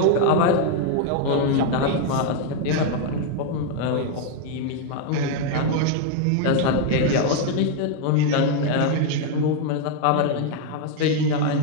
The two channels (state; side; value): different; both; correlation 0.01